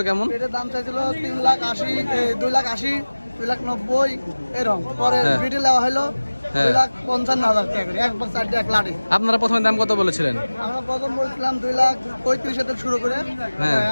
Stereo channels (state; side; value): inverted; both; correlation -1.00